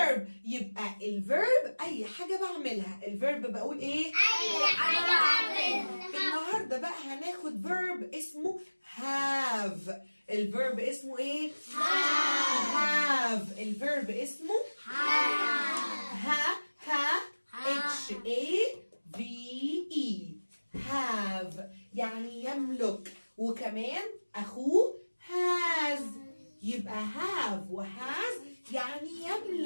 يبقى الفيرب اي حاجه بعملها. الفيرب بقول ايه؟ أي حاجة بعملها. النهارده بقى هناخد verb اسمه have. الفيرب اسمه ايه؟ have. الفيرب اسمه H-A-V-E have يعني يملك. وكمان أخوه has. يبقى have وhas يعني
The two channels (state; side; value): inverted; both; correlation -1.00